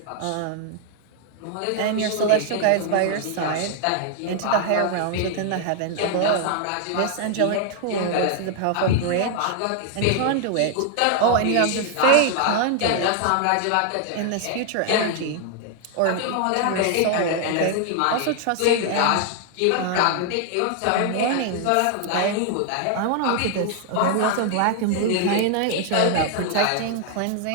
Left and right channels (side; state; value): both; different; correlation 0.00